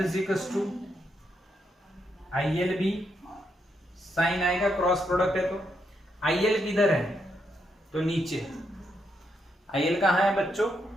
to IL B, sine आएगा, क्रॉस प्रोडक्ट है तो IL किधर है? तो नीचे। IL कहाँ है बच्चों?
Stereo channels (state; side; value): normal; both; correlation 0.80